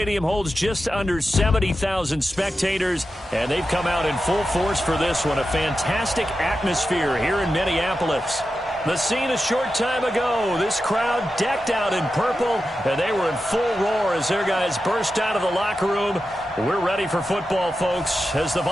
holds just under 70,000 spectators, and they've come out in full force for this one. A fantastic atmosphere here in Minneapolis. The scene a short time ago, this crowd decked out in purple, and they were in full roar as their guys burst out of the locker room. We're ready for football, folks, as the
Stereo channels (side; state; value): both; normal; correlation 0.91